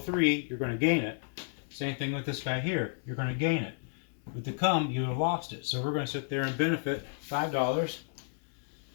you're going to gain it. Same thing with this guy here, you're going to gain it. With the come, you have lost it. So we're going to sit there and benefit $5.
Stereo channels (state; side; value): silent; right; digital silence